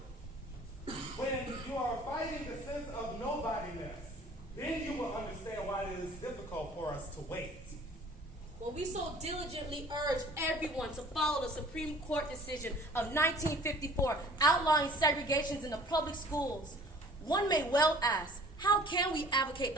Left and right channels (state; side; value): normal; both; correlation 0.50